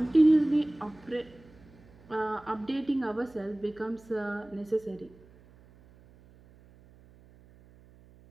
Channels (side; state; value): right; noise; hum, 25 dB below the sound